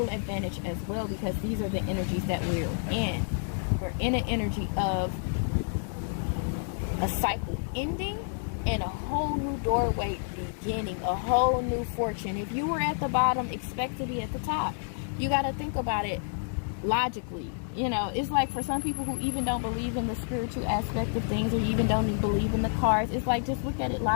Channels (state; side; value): silent; right; digital silence